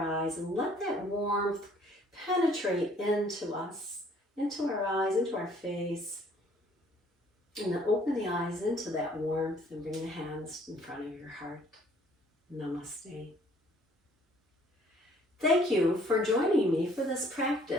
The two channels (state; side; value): normal; both; correlation 0.59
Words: and let that warmth penetrate into us, into our eyes, into our face. And then open the eyes into that warmth and bring the hands in front of your heart. Namaste. Thank you for joining me for this